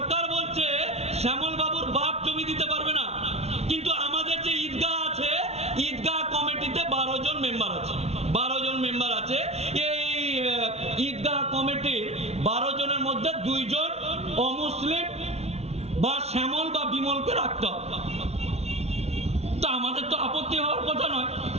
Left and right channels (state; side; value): late; left; 0.31 ms